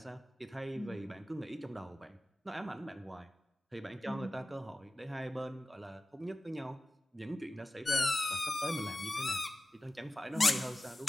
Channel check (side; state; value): both; normal; correlation 0.95